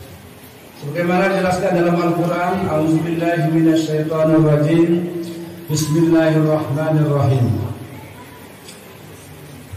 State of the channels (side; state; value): both; identical; correlation 1.00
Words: Sebagaimana dijelaskan dalam Al-Quran, A'udzubillahi minasyaitonirrajim, Bismillahirrahmanirrahim.